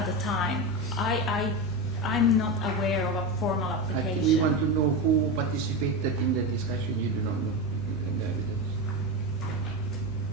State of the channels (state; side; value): normal; both; correlation 0.18